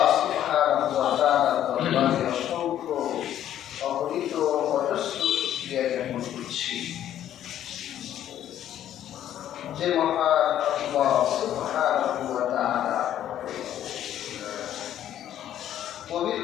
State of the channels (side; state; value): right; quieter; 11.3 dB